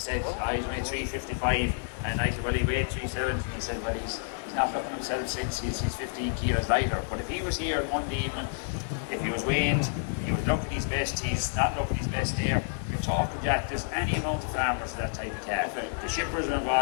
I weighed 355, and I said, well, he weighed 370. And he said, well, he's not looking himself since he's 15 kilos lighter. But if he was here Monday evening, if he was weighed, he would look at his best, he's not looking his best there. You're talking, Jack, there's any amount of farmers for that type of calf. Okay. The shippers are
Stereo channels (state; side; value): silent; right; 58 dB below the other